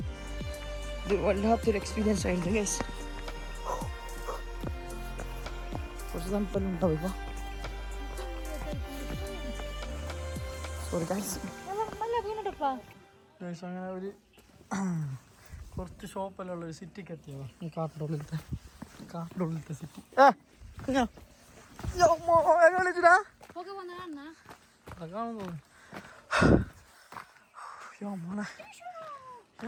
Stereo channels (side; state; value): both; identical; correlation 1.00